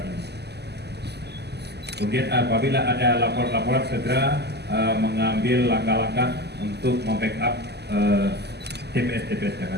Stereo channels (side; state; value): left; late; 0.49 ms